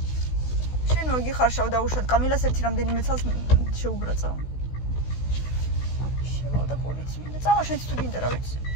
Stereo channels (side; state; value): right; late; 16 ms